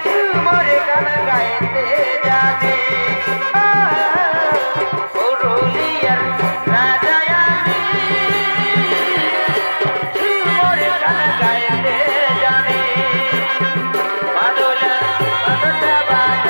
ঝুমুর গান গাইতে জানি। পুরুলিয়ার রাজায় আমি ঝুমুর গান গাইতে জানি। মাদলটা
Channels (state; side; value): inverted; both; correlation -1.00